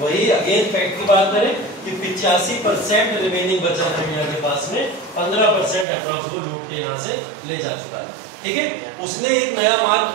अगेन फैक्ट की बात करें कि 85% रिमेनिंग बचा था इंडिया के पास में, 15% अप्रॉक्स वो लूट के यहाँ से ले जा चुका था। ठीक है, उसने एक नया मार्ग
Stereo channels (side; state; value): left; drops out; at 5.9 s